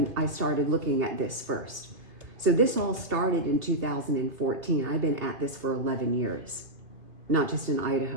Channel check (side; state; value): left; late; 2.4 ms